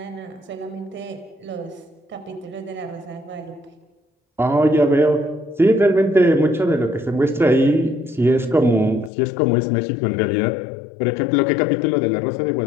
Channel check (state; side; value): drops out; right; at 9.1 s